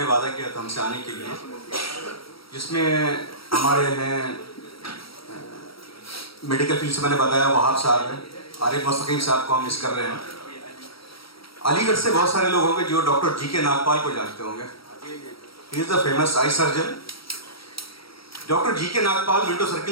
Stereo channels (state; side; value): late; right; 0.75 ms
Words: वादा किया था हमसे आने के लिए, जिसमें हमारे हैं मेडिकल फील्ड से मैंने बताया वहाब साहब हैं, आरिफ मुस्तकीम साहब को हम मिस कर रहे हैं। अलीगढ़ से बहुत सारे लोग होंगे जो डॉक्टर जी के नागपाल को जानते होंगे। He is the famous eye surgeon. Doctor G K Nagpal Minto